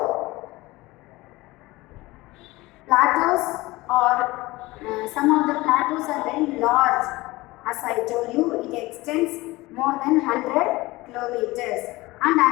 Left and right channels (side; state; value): right; quieter; 20.4 dB